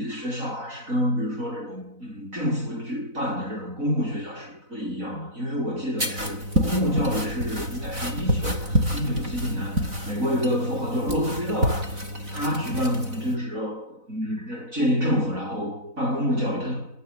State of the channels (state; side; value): late; left; 4.0 ms